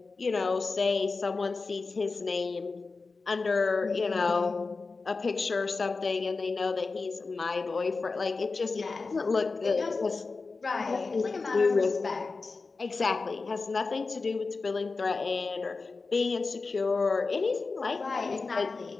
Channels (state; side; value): quieter; right; 4.1 dB